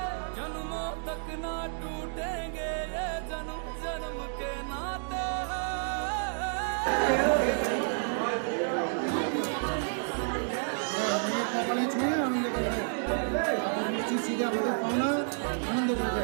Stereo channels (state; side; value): silent; left; digital silence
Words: जन्मों तक ना टूटेंगे ये जन्म जन्म के नाते हैं। কপালে ছুঁয়ে আনন্দ করে নিশ্চিত সিধে আমাদের পাওনা আনন্দ করবে।